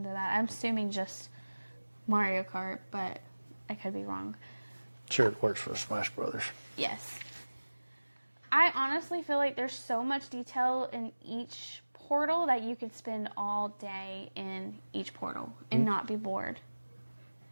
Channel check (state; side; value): inverted; both; correlation -1.00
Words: that. I'm assuming just Mario Kart, but I could be wrong. Sure, it works for Smash Brothers. Yes. I honestly feel like there's so much detail in each portal that you could spend all day in each portal and not be bored.